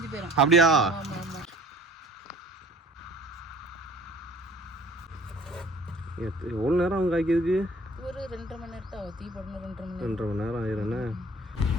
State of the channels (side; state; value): both; normal; correlation 0.51